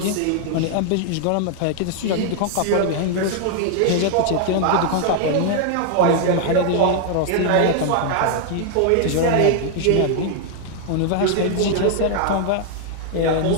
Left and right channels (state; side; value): different; both; correlation 0.00